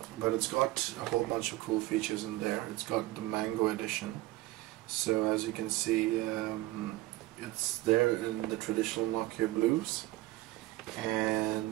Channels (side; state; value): left; quieter; 18.3 dB